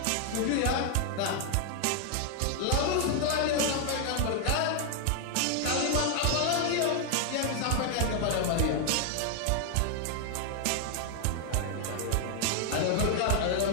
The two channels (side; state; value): both; different; correlation 0.00